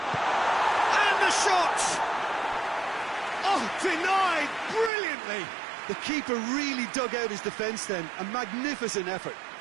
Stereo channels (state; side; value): drops out; left; at 4.9 s